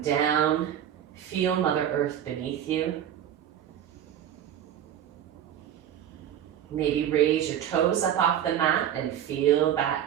down. Feel Mother Earth beneath you. Maybe raise your toes up off the mat and feel that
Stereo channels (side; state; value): left; quieter; 10.2 dB